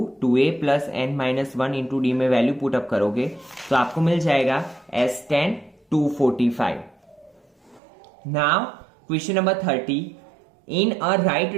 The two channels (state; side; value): drops out; left; at 7.8 s